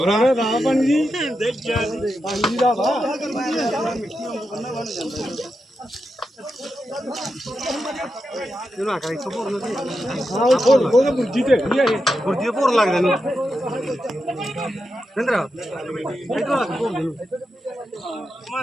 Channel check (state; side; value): normal; both; correlation 0.87